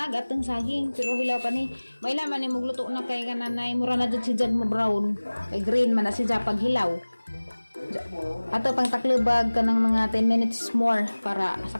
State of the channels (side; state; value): both; inverted; correlation -1.00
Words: ag atong saging pero hilaw pa ni. May laman ni mugluto na kay kananay mura na jud si Jad mo brown. Kay green man na si Jad pag hilaw. Ato pang taklubag kanang mga 10 minutes more para